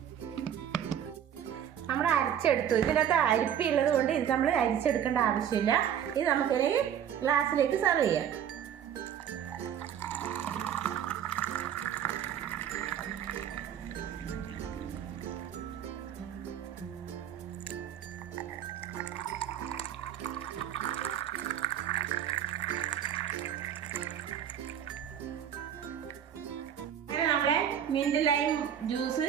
നമ്മൾ അരച്ചെടുത്തു. ഇതിനകത്ത് അരിപ്പുള്ളത് കൊണ്ട് ഇത് നമ്മൾ അരിച്ചെടുക്കേണ്ട ആവശ്യമില്ല. ഇത് നമുക്കിനി ഗ്ലാസ്സിലേക്ക് സെർവ് ചെയ്യാം. നമ്മളെ മിന്റ് ലൈം ജ്യൂസ്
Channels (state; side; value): quieter; left; 9.4 dB